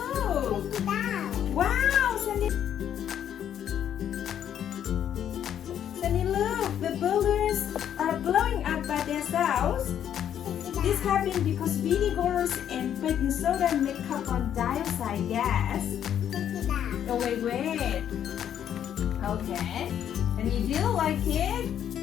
take it down. Wow, Sandy! Sandy, look! The balloons are blowing up by themselves. Take it This down. happened because vinegars and baking soda make carbon dioxide gas. Take it down. Oh, wait. Okay. And you do like it?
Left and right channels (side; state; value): right; quieter; 9.8 dB